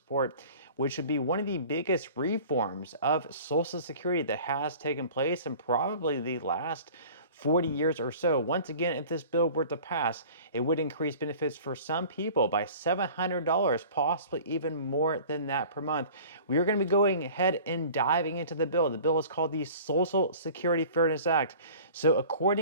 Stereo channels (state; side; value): inverted; both; correlation -0.44